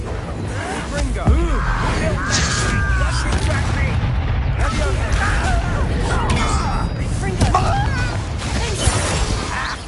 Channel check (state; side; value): identical; both; correlation 1.00